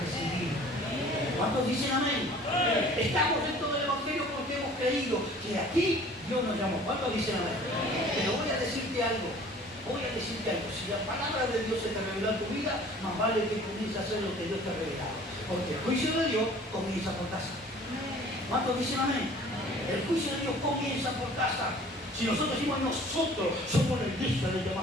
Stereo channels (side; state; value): both; normal; correlation 0.49